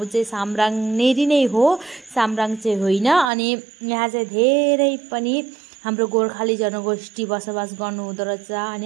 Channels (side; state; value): left; drops out; at 3.3 s